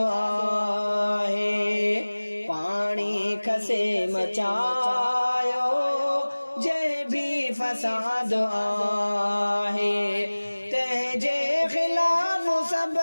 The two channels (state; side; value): inverted; both; correlation -1.00